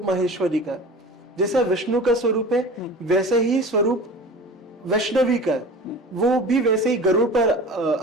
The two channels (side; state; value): both; normal; correlation 0.37